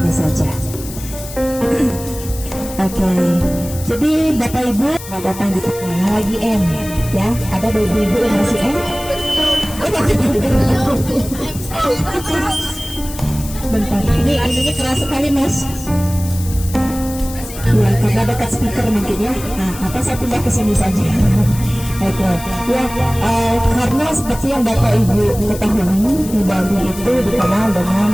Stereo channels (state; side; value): noise; left; hiss, 13 dB below the sound